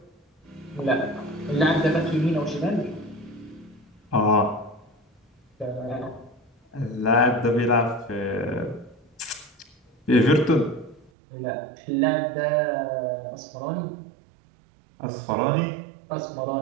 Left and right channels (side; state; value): left; drops out; at 11.1 s